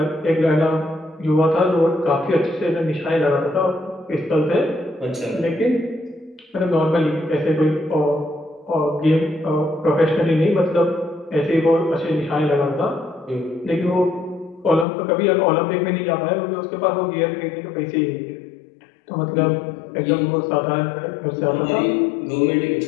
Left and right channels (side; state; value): right; drops out; at 14.9 s